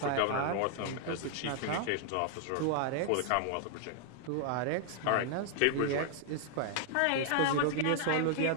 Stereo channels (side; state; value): both; different; correlation 0.00